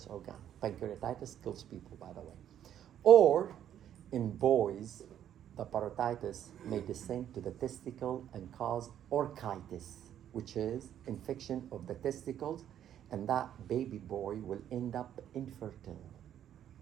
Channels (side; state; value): left; quieter; 10.4 dB